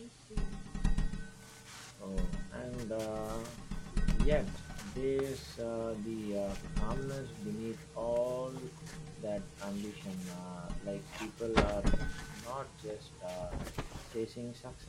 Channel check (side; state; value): both; identical; correlation 1.00